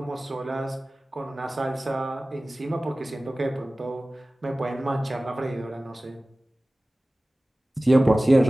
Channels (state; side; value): normal; both; correlation 0.97